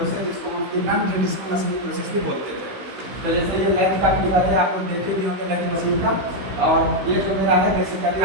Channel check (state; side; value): late; left; 16 ms